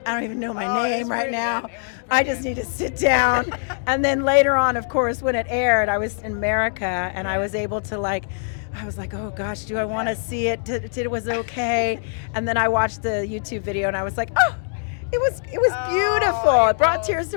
I don't even know my name right now. I just need to sit down. And then later on, of course, when it aired, I was in America and I was able to I was like, oh gosh, do I want to see it? It was okay. And then I watched the YouTube video and I was like, oh, it was beautiful. It brought tears to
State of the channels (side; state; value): right; silent; 64 dB below the other